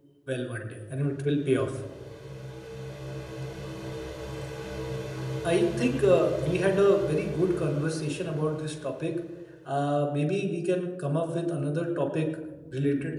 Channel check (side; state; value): both; identical; correlation 1.00